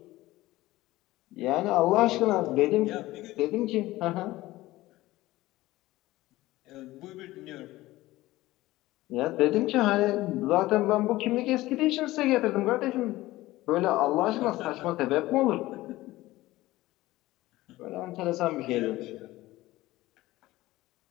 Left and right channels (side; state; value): right; quieter; 17.7 dB